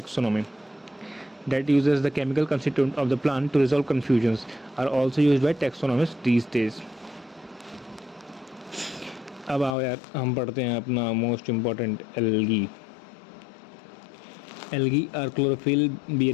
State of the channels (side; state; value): right; drops out; at 9.8 s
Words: that uses the chemical constituent of the plant to resolve confusions are also used by taxonomists these days. अब आओ यार हम पढ़ते हैं अपना most important algae. Algae are chlorophyll